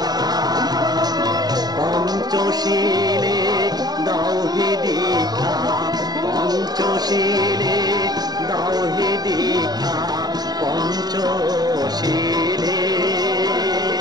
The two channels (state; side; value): late; left; 0.19 ms